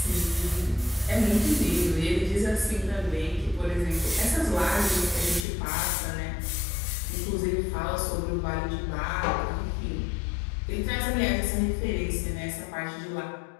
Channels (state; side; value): drops out; right; at 5.5 s